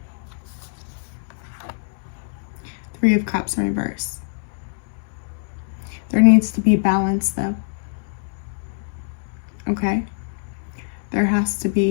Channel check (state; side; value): silent; right; digital silence